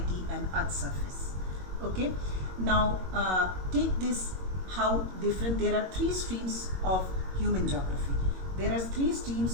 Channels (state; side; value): late; left; 22 ms